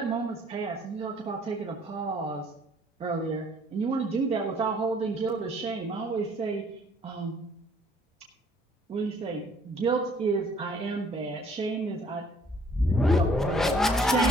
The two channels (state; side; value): normal; both; correlation 0.60